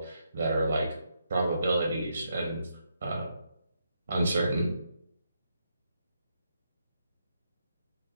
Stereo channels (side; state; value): both; inverted; correlation -0.80